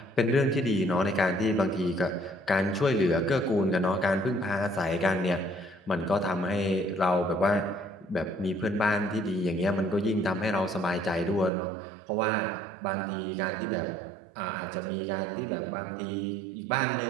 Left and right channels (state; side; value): drops out; left; at 11.5 s